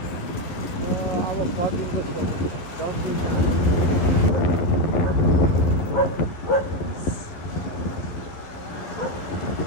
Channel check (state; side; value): late; right; 11 ms